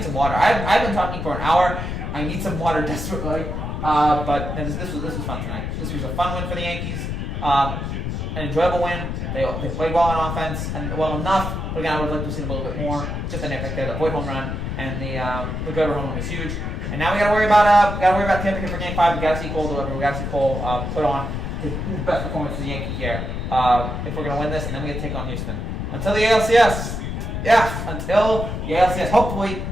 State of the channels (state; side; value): noise; left; rumble, 3 dB below the sound